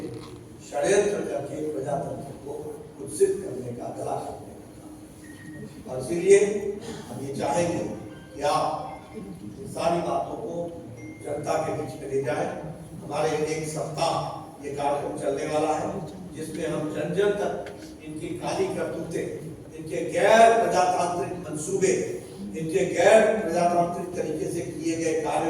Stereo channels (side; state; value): both; identical; correlation 1.00